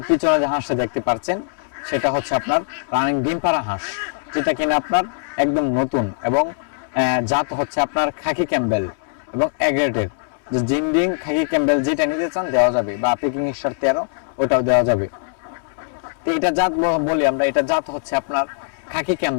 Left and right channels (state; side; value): silent; right; 64 dB below the other